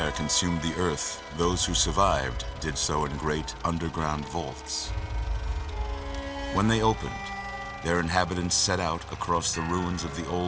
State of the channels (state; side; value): identical; both; correlation 1.00